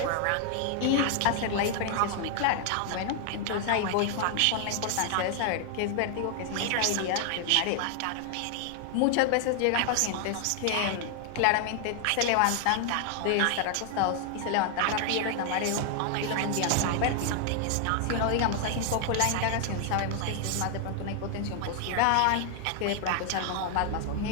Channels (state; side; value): different; both; correlation 0.00